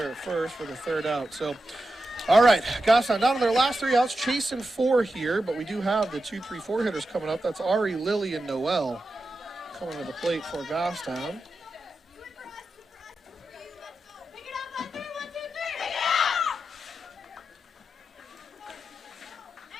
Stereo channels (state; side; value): normal; both; correlation 0.90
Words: at first for the 3rd out. So, all right, Goffstown down to their last 3 outs, chasing 4 here, but we do have the 2-3-4 hitters coming up. That's Ari, Lily, and Noel coming to the plate for Goffstown.